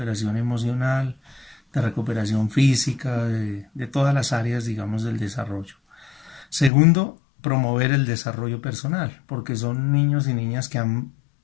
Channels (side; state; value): right; drops out; at 6.7 s